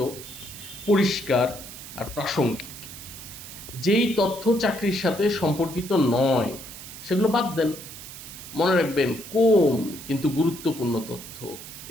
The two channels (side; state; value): right; noise; hiss, 13 dB below the sound